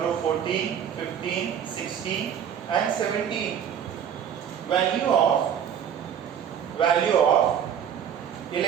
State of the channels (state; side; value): quieter; left; 8.6 dB